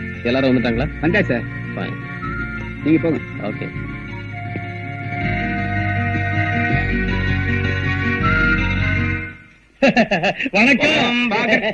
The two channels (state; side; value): identical; both; correlation 1.00